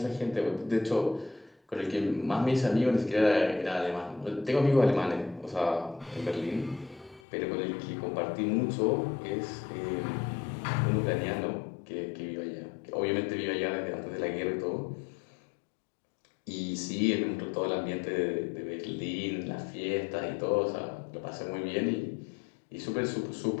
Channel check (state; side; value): drops out; right; at 7.2 s